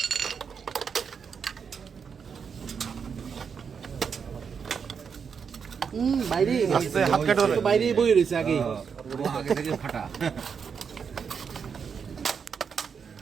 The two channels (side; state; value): left; quieter; 6.5 dB